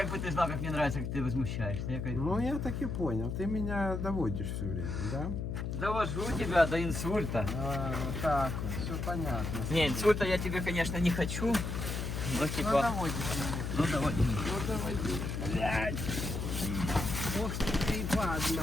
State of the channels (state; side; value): noise; left; hum, 3 dB below the sound